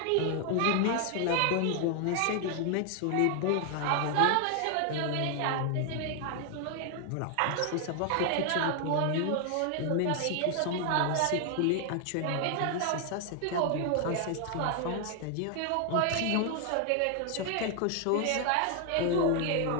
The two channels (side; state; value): both; different; correlation 0.00